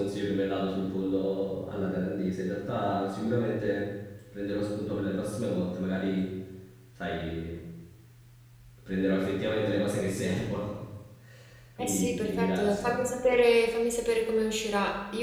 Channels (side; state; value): both; identical; correlation 1.00